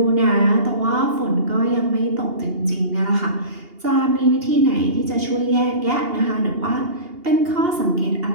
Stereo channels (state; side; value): late; left; 2.8 ms